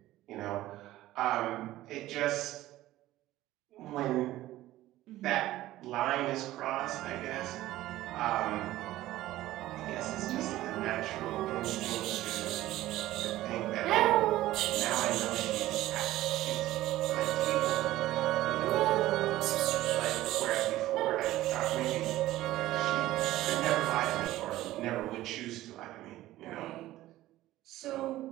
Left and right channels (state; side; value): quieter; left; 15.6 dB